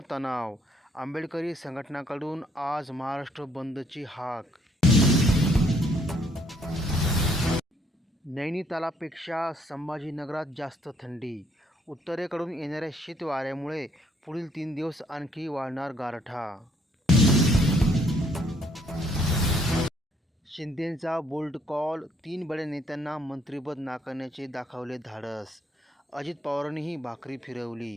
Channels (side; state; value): both; normal; correlation 0.66